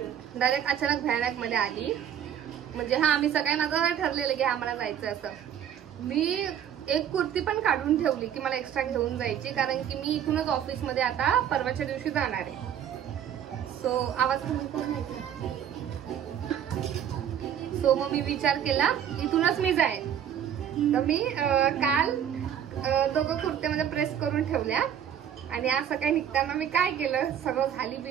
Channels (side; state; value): left; quieter; 9.4 dB